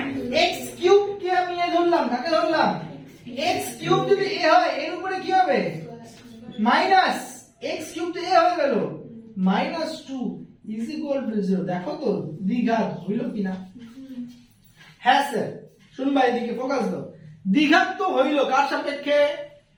x³ কে আমি এ ধরলাম, কাকে ধরলাম? x³ যদি a হয় এর উপরে কি হবে? মাইনাস x³ তো a হয়ে গেল, -2 = 0। দেখো তো দ্বিঘাত হইল কিনা? হ্যাঁ স্যার, শুনবা এদিকে ফোকাস দাও। দ্বিঘাত তো হইল কার সাপেক্ষে?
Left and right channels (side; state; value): both; identical; correlation 1.00